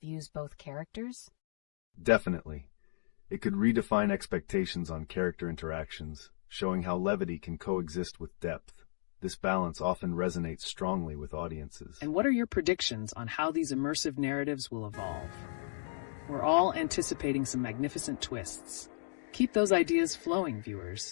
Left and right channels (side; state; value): right; silent; digital silence